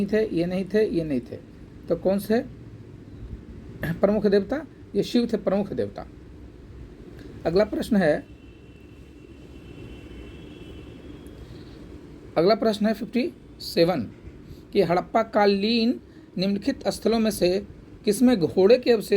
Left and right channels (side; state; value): both; identical; correlation 1.00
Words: थे, ये नहीं थे, ये नहीं थे, तो कौन से प्रमुख देवता? ये शिव थे प्रमुख देवता। अगला प्रश्न है 57 कि हड़प्पा कालीन निम्नलिखित स्थलों में से किसमें घोड़े के